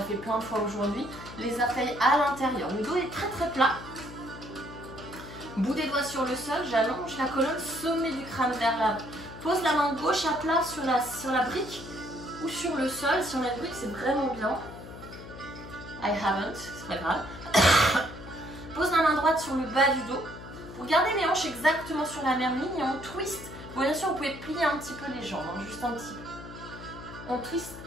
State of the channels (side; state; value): left; noise; hum, 13 dB below the sound